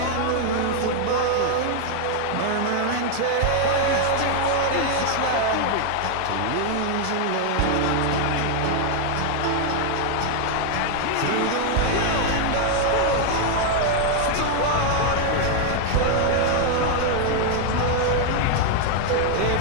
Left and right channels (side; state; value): both; different; correlation 0.00